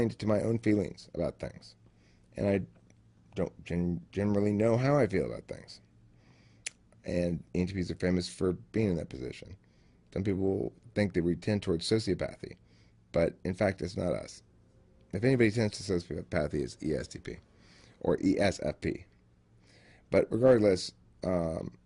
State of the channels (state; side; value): identical; both; correlation 1.00